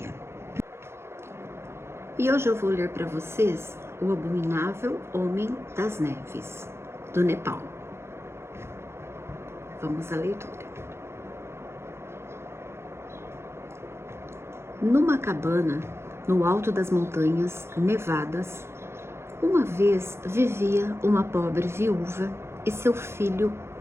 E hoje eu vou ler para vocês O Abominável Homem das Neves, do Nepal. Vamos à leitura. Numa cabana, no alto das montanhas nevadas, uma vez vivia uma pobre viúva e seu filho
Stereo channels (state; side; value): late; left; 0.12 ms